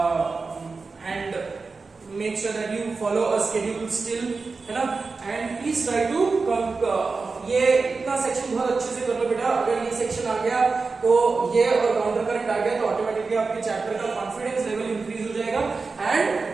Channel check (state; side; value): quieter; left; 4.2 dB